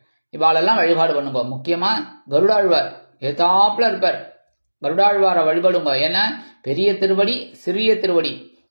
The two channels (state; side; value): inverted; both; correlation -1.00